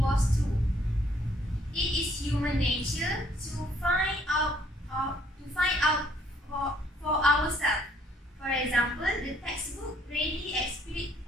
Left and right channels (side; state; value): both; normal; correlation 0.64